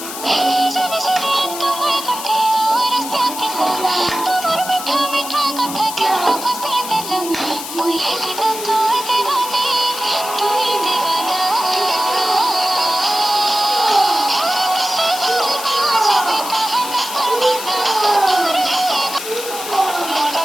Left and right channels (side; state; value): left; noise; hiss, 9 dB below the sound